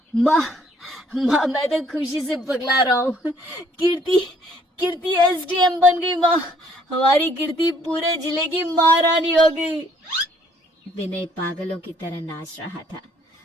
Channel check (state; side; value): normal; both; correlation 0.63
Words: माँ, मैं तो खुशी से पगला रहा हूँ। कीर्ति एसडीएम बन गई माँ। हमारी कीर्ति पूरे जिले की महारानी हो गई। विनय पागलों की तरह नाच रहा था